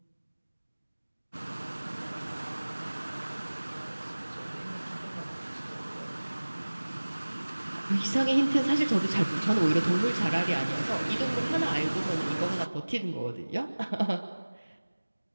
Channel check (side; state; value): both; inverted; correlation -1.00